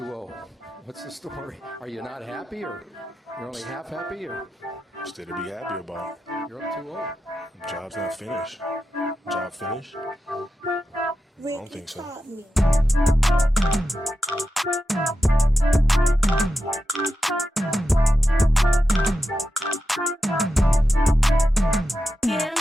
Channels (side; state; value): both; normal; correlation 0.90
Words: What's the story? Are you not happy, or you're only half happy, or? Still to be happy about. You're up 2-0. Job's not finished. Job finished? I don't think so.